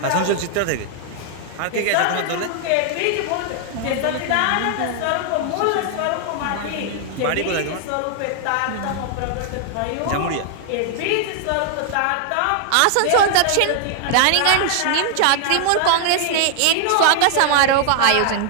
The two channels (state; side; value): different; both; correlation 0.00